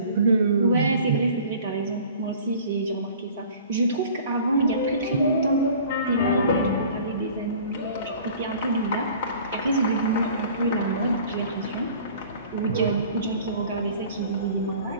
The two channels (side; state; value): both; inverted; correlation -0.47